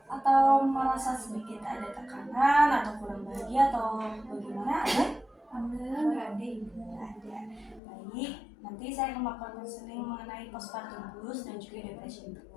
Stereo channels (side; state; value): right; drops out; at 7.8 s